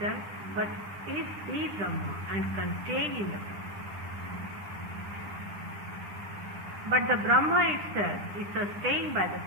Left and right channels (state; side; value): late; left; 10 ms